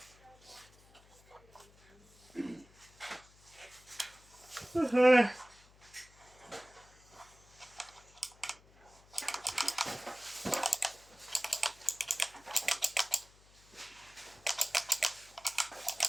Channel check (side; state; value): left; noise; hum, 26 dB below the sound